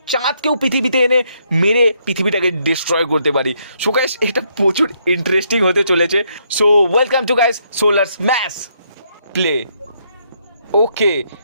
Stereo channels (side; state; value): both; inverted; correlation -0.74